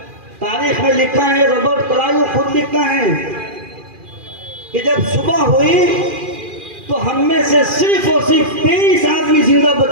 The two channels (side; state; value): left; late; 2.4 ms